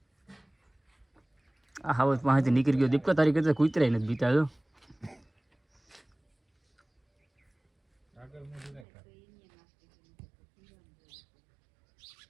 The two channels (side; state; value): left; drops out; at 8.8 s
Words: આ હાવત પાસેથી નીકળી ગયો દીપકા તારી કરતા કૂતરાય નથી બીતા જો